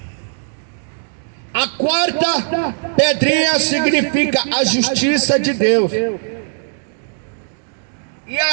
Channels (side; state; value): left; silent; digital silence